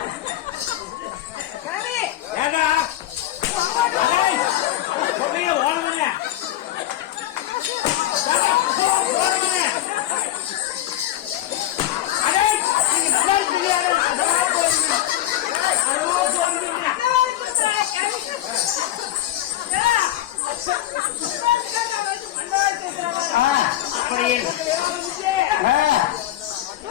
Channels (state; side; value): quieter; right; 13.5 dB